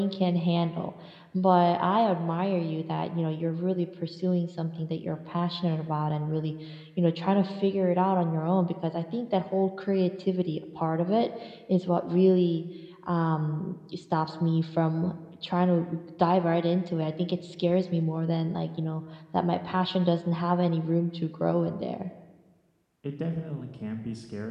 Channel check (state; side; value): identical; both; correlation 1.00